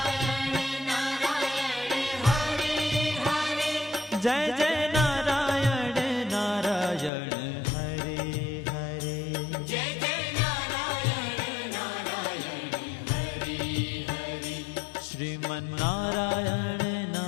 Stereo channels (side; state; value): right; drops out; at 7.1 s